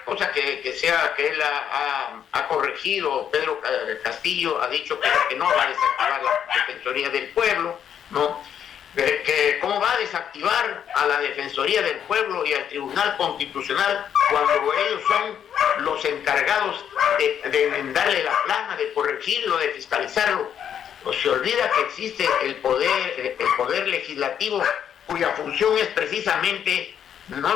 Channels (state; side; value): quieter; right; 8.9 dB